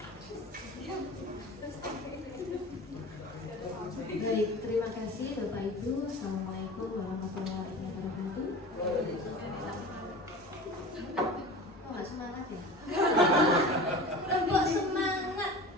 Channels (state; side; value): normal; both; correlation 0.35